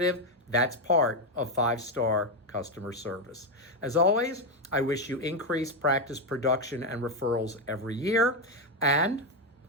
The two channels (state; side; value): normal; both; correlation 0.06